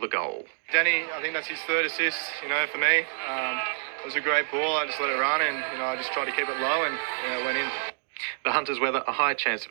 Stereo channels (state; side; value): silent; left; digital silence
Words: goal. Danny, I think that's his third assist, for me. It was a great ball. I just let it run and, I just tried to keep it low and it went in. The Hunters weather, a high chance